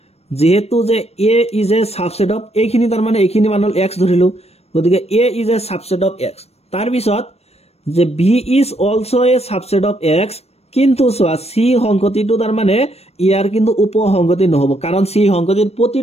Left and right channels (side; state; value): right; late; 0.30 ms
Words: যে a is a subset of এইখিনি তাৰ মানে এইখিনি মান হল x ধৰিলো গতিকে a is a subset of x তাৰ পিছত যে b is also a subset of x কিন্তু সোয়া c সংগতিটো তাৰ মানে ইয়াৰ কিন্তু উপসংগতি নহব কাৰণ c সংগতিৰ